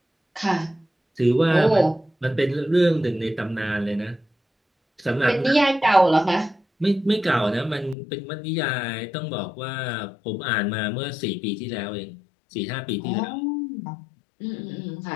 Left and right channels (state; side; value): drops out; right; at 8.0 s